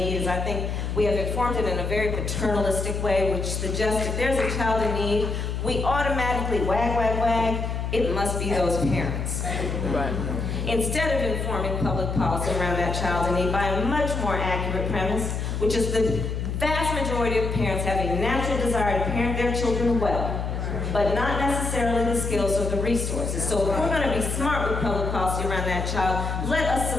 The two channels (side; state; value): left; noise; hum, 3 dB below the sound